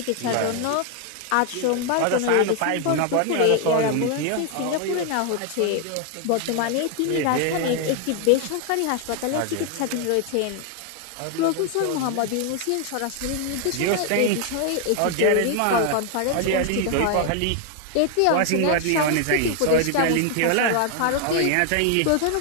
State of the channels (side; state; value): both; different; correlation 0.01